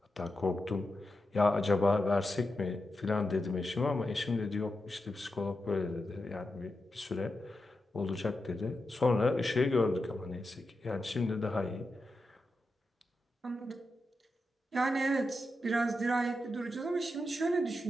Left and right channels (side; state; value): both; normal; correlation 0.89